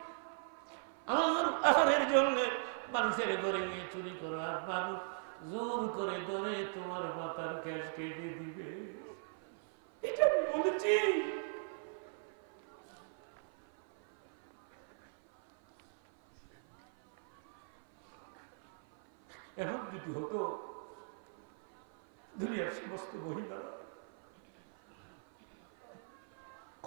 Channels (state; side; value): silent; left; 52 dB below the other